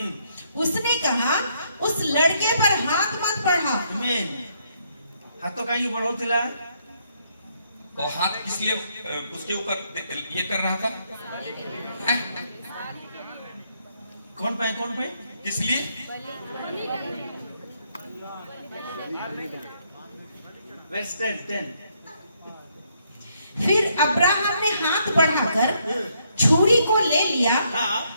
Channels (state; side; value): inverted; both; correlation -0.73